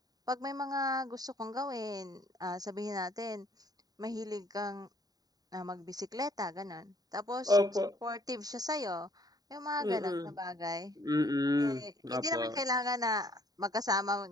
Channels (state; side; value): late; left; 0.18 ms